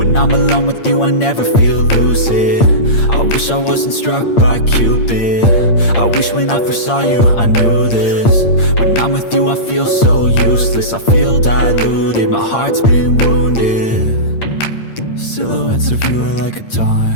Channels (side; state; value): right; late; 8.7 ms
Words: I'm alone with you I never feel lucid. I wish I wasn't struck by Cupid. I wish when I first saw you I knew this. When I'm with you I feel so useless, I feel diluted, my heart's been wounded. Silhouettes of you are like a